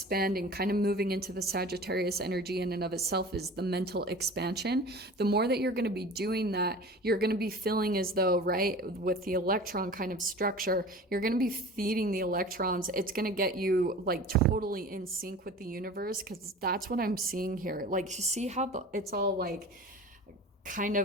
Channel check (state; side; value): normal; both; correlation 0.39